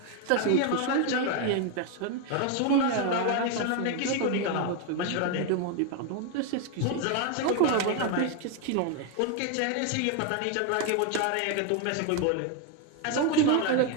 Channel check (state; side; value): different; both; correlation 0.01